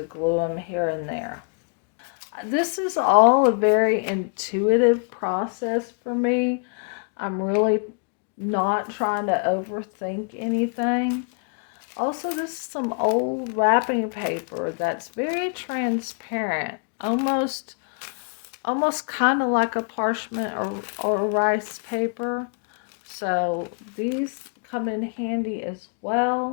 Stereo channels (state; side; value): quieter; right; 39.9 dB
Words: glue them here and there. This is all a very intuitive process for me. I'm really not trying to overthink anything. Also, this is some old wrapping paper that's very transparent, almost almost kind of like a parchment or rice paper. So these come in handy as